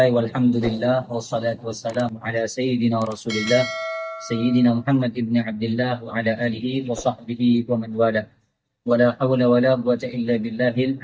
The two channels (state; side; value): identical; both; correlation 1.00